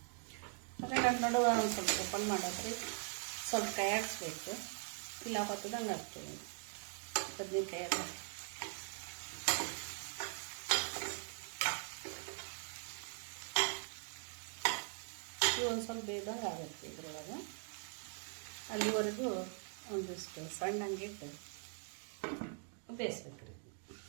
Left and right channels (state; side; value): silent; left; 50 dB below the other